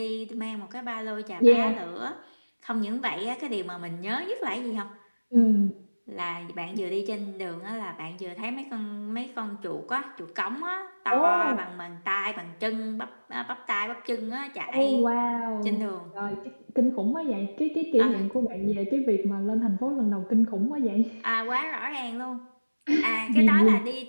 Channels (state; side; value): inverted; both; correlation -1.00